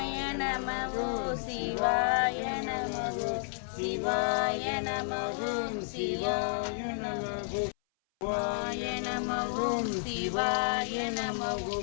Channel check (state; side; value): silent; right; 57 dB below the other